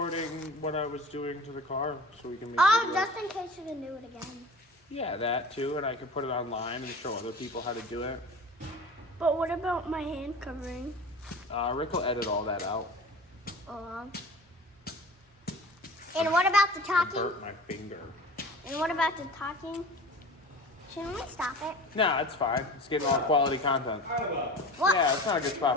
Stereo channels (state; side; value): normal; both; correlation 0.38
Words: what I was doing to the car so we can make Oh, videos. just in case you can do it again. Yeah, that too, and I can put it online and show other people how to do it. But what about my hand covering? Rick will edit all that out. And what about the I talking? burnt my finger. And what about the talking? Shouldn't we stop it? Nah, it's fine. It's getting all quality content. What? Yeah, it's not a good spot